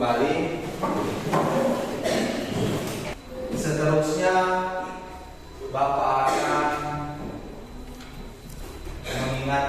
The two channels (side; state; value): both; identical; correlation 1.00